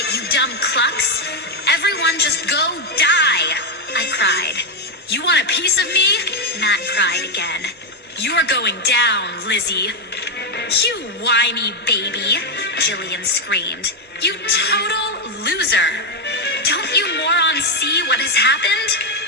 you dumb clucks. Everyone just go die," I cried. "You want a piece of me?" Matt cried again. "You're going down, Lizzie." "You whiny baby," Jillian screamed. "You total loser. Don't you morons see what has happened?"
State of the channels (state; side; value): normal; both; correlation 0.05